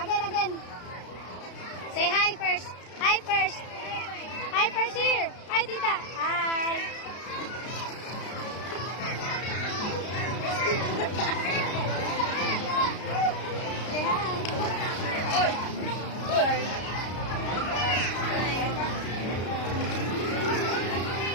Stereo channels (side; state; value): right; late; 33 ms